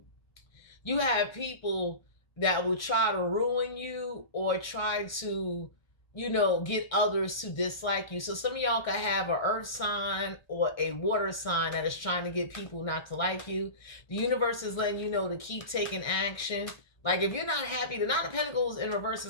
you have people that will try to ruin you or try to, you know, get others to dislike you. So some of y'all could have an earth sign or a water sign that is trying to get people not to like you. The universe is letting you know to keep taking action. Like if you're not happy, the Nine of Pentacles in reverse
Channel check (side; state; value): right; late; 1.1 ms